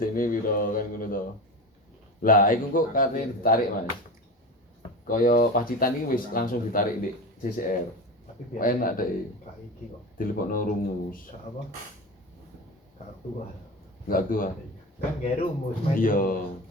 ini biro kan ngono toh. Lah, iku kok karena ditarik Mas. Kaya Pacitan iki wis langsung ditarik di CCR. Tapi biasa Enak deh. Kak iki kok. Dilebokno rumus. Kak apa? Kak tua. Enggak tua. Kan gak rumus. Iya.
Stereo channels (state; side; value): normal; both; correlation 0.27